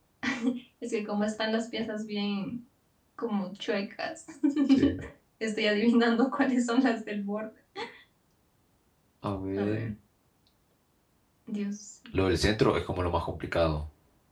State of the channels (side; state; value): both; identical; correlation 1.00